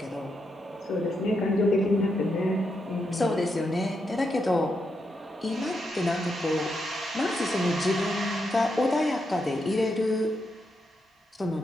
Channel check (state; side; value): normal; both; correlation 0.82